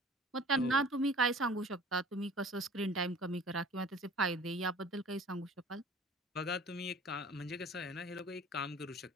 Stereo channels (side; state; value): both; normal; correlation 0.46